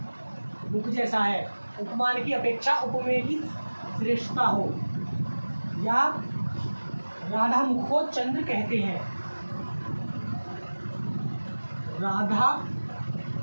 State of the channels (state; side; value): inverted; both; correlation -1.00